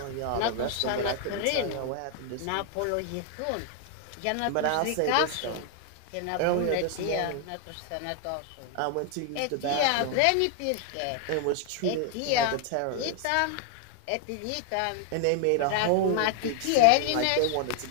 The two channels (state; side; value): different; both; correlation 0.00